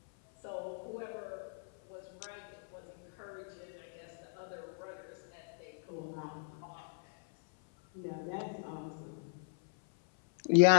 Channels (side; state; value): right; silent; 53 dB below the other